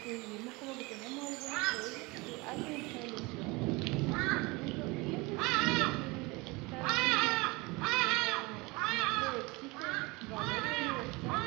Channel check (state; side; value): quieter; left; 24.8 dB